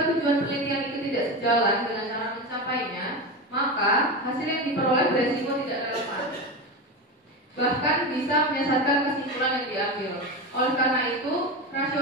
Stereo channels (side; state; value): both; normal; correlation 0.20